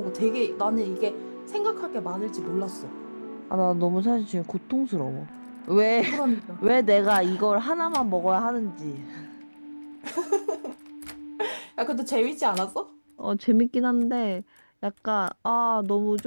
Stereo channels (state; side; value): inverted; both; correlation -1.00